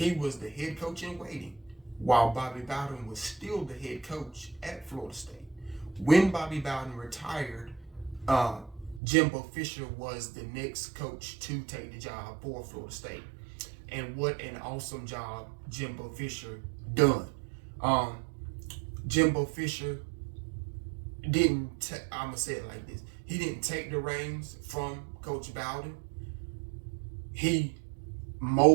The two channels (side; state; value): left; drops out; at 9.0 s